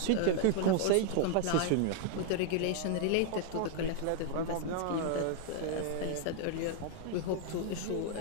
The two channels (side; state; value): both; different; correlation 0.00